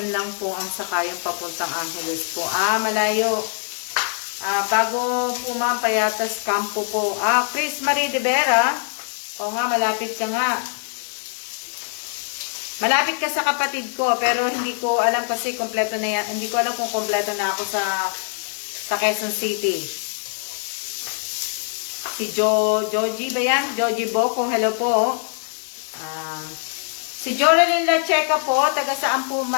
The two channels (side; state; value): right; silent; digital silence